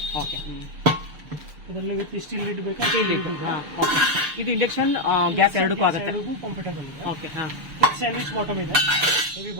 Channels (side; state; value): left; late; 6.8 ms